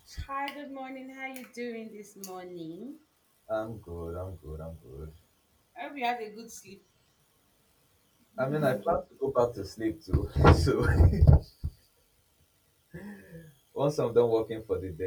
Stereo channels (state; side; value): identical; both; correlation 1.00